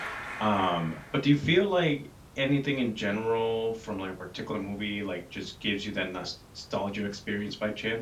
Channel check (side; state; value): both; identical; correlation 1.00